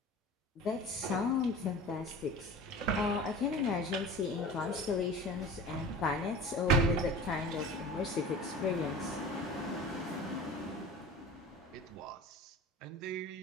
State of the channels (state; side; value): normal; both; correlation 0.37